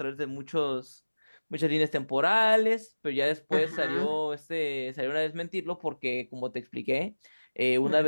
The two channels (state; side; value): inverted; both; correlation -1.00